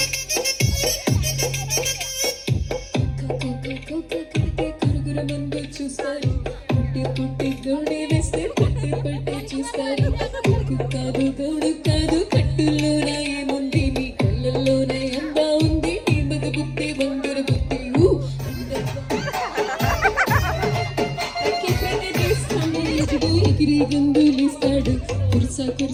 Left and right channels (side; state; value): both; identical; correlation 1.00